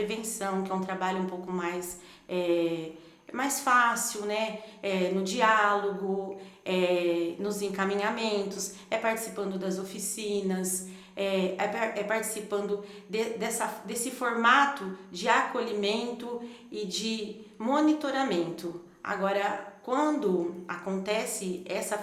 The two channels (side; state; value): both; identical; correlation 1.00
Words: que é um trabalho um pouco mais fácil, né? No diálogo, nos encaminhamentos, participando das oficinas, participando desse formato de acolhimento e de monitoramento. Agora, quando acontece essa